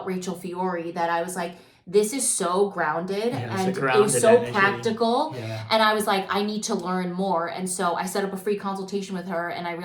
Rachel Fiore that I was like, this is so grounded, and it was so energy. Practical. Yeah. And I was like, I need to learn more. And so I set up a free consultation with her, and I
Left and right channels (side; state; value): both; identical; correlation 1.00